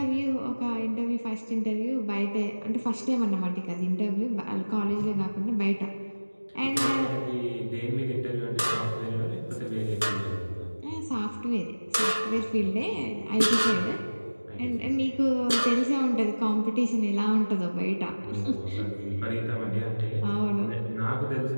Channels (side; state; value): both; inverted; correlation -1.00